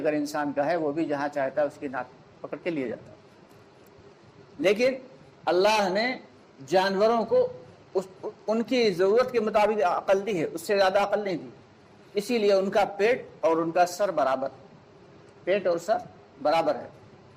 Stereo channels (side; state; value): both; identical; correlation 1.00